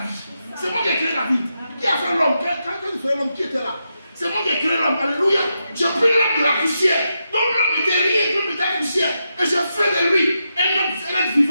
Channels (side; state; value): both; inverted; correlation -0.86